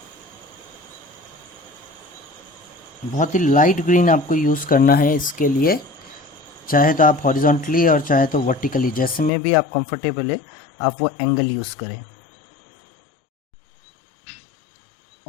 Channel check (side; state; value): right; drops out; at 9.3 s